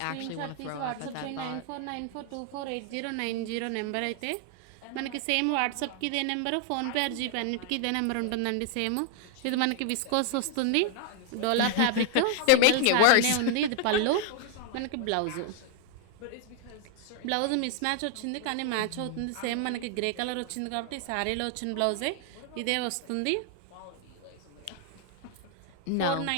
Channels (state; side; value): different; both; correlation 0.00